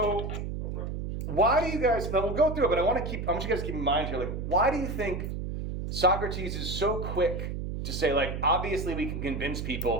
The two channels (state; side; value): noise; right; hum, 4 dB below the sound